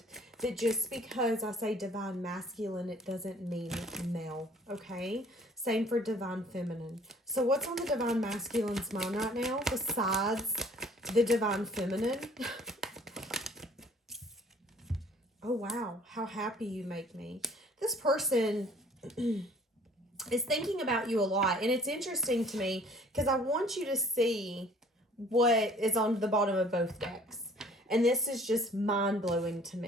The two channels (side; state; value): both; normal; correlation 0.54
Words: that just because I say Divine Masculine, it doesn't mean male, okay? Same for Divine Feminine. So what's on the Divine Masculine's mind right now besides the Divine Feminine? Oh, wow. How happy you make me. This person is thinking about you a lot. And it's interesting to me because I want you to see what is on the bottom of both decks. And this is just mind-blowing to